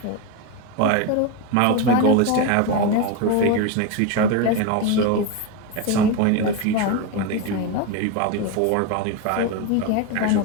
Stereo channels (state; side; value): different; both; correlation 0.03